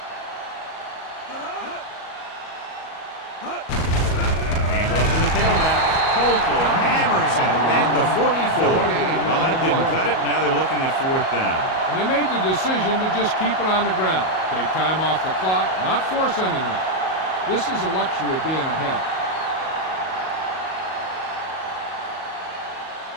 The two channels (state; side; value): late; right; 38 ms